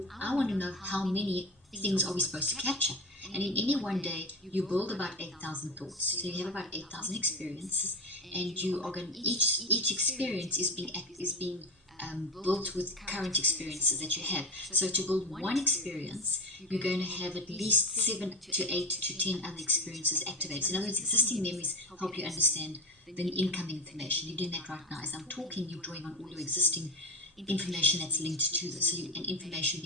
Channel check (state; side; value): normal; both; correlation 0.22